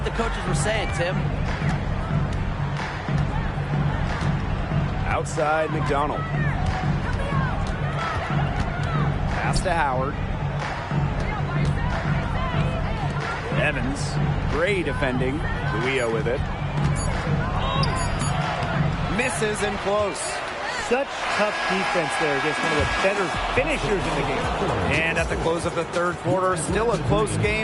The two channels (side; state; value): both; identical; correlation 1.00